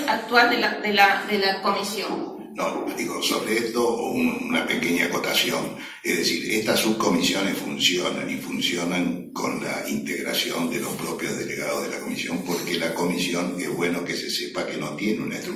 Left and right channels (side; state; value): both; identical; correlation 1.00